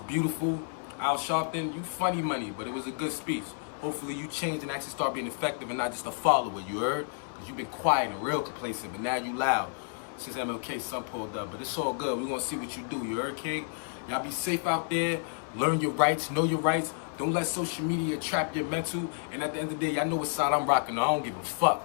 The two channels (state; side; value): silent; right; 56 dB below the other